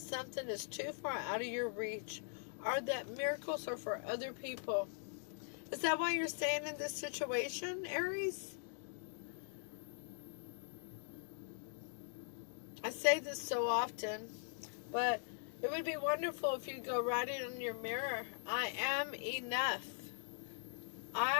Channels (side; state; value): right; silent; digital silence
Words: is too far out of your reach, or that miracles are for other people. Is that why you're staying in this situation, Aries? I say this so often, but it would be wonderful if you go write it on your mirror. I am enough.